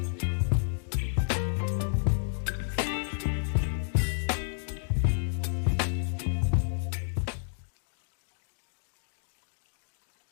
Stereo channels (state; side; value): silent; right; digital silence